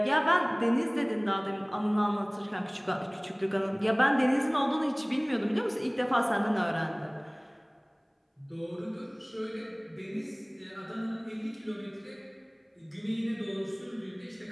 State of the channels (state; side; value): identical; both; correlation 1.00